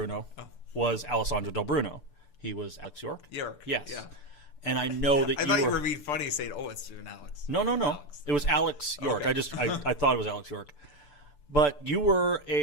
was Alessandro Del Bruno, he was Alex York. York. Yes. Yeah. And I know that I thought you were being funny saying, "Oh, it's an Alex." No. Alex. It was Alex York. Okay. I thought it was Alex York. But you were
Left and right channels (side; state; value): right; late; 6.8 ms